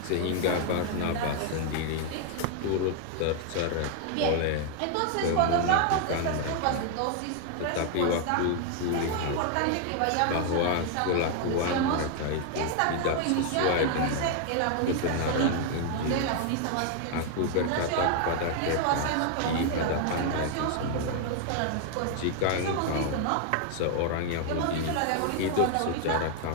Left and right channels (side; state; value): both; different; correlation 0.00